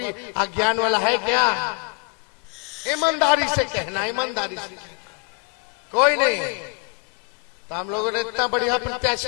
अज्ञान वाला है क्या? ईमानदारी से कहना, ईमानदारी से कोई नहीं है। तो हम लोगों ने इतना बढ़िया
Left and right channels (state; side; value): quieter; right; 34.3 dB